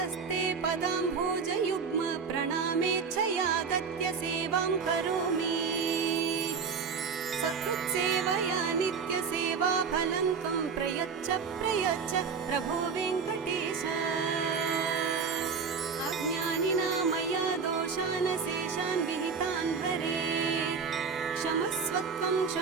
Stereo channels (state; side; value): quieter; left; 5.7 dB